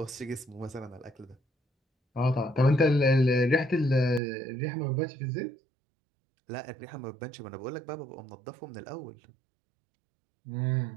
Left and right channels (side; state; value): left; drops out; at 4.2 s